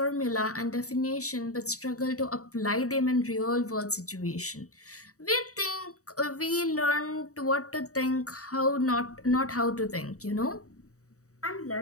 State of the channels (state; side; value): late; right; 0.65 ms